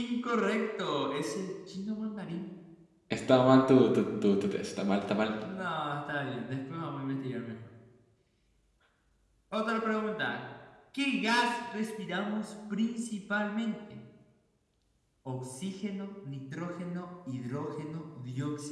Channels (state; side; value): identical; both; correlation 1.00